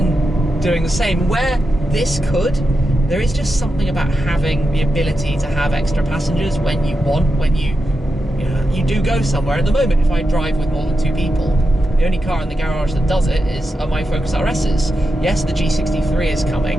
doing the same. Where this could, there is just something about having the ability to have extra passengers when you want, when you do go somewhere. At the moment, if I drive with more than 2 people, the only car in the garage that does it are my Focus RSs. Yes, the G63 is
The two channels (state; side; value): normal; both; correlation 0.89